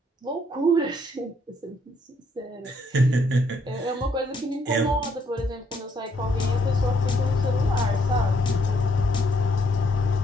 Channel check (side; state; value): both; normal; correlation 0.71